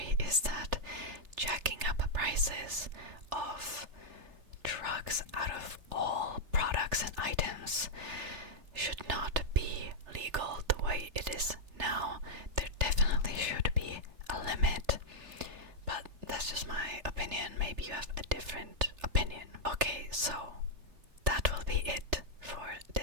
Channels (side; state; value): left; late; 3.3 ms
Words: is that jacking up prices of drugs out of all products and items should not be legal the way it is now. There definitely should be a limit. But that's just my opinion. Maybe you have a different opinion. Okay, so that will be it for